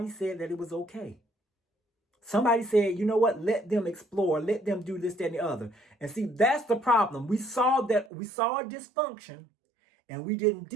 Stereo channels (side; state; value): left; drops out; at 8.1 s